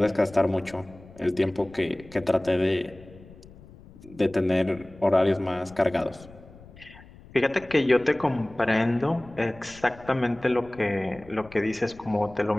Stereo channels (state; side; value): noise; left; rumble, 21 dB below the sound